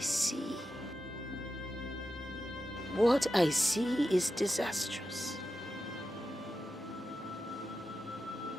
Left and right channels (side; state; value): both; normal; correlation 0.90